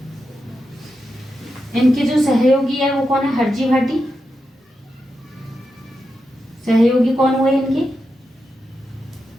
इनके जो सहयोगी है वो कौन है, हरजी भाटी। सहयोगी कौन हुए इनके,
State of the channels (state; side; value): normal; both; correlation 0.87